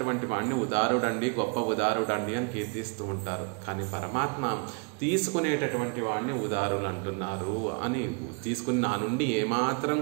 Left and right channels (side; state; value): left; quieter; 35.5 dB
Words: వాడిని ఉదారుడండి, గొప్ప ఉదారుడండి అని కీర్తిస్తూ ఉంటారు. కానీ పరమాత్మ తీసుకునేటటువంటి వాడిని ఉదారులు అంటున్నారు అని తీసుకుని నా నుండి ఏమాత్రం